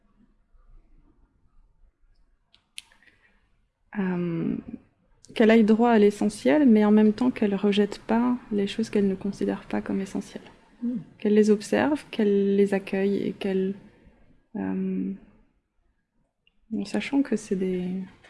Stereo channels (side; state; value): both; identical; correlation 1.00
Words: Qu'elle aille droit à l'essentiel, mais en même temps qu'elle rejette pas les choses qu'elle ne considère pas comme essentielles. Qu'elle les observe, qu'elle les accueille et qu'elle... en sachant que c'est des